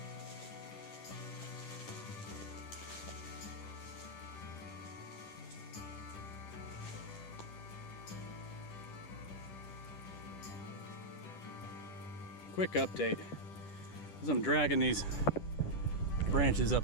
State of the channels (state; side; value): late; right; 10 ms